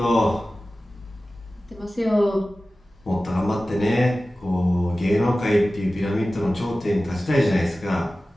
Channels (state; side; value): normal; both; correlation 0.96